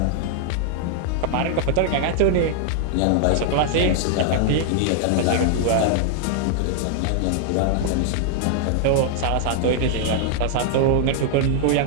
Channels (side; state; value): both; different; correlation 0.00